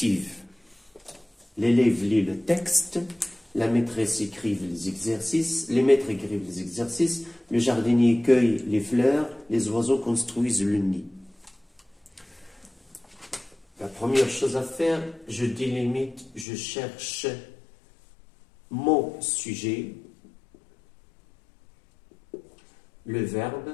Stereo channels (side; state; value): right; drops out; at 16.4 s